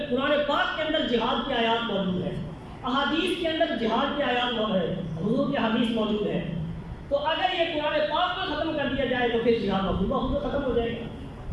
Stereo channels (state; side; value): identical; both; correlation 1.00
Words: قرآن پاک کے اندر جہاد کی آیات موجود ہیں، احادیث کے اندر جہاد کی آیات موجود ہیں، حضور کی حدیث موجود ہے۔ تو اگر یہ قرآن پاک کو ختم کر دیا جائے تو پھر جہاد بخود ختم ہو جائے گا۔